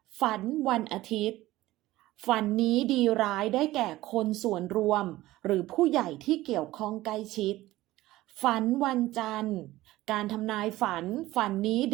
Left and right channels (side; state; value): left; quieter; 16.9 dB